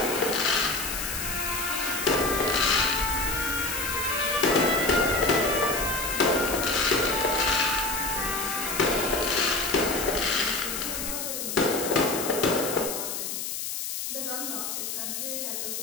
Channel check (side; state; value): left; noise; hiss, 4 dB below the sound